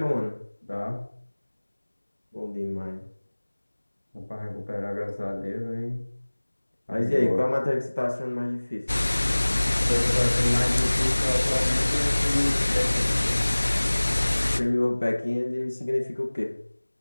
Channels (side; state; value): both; inverted; correlation -1.00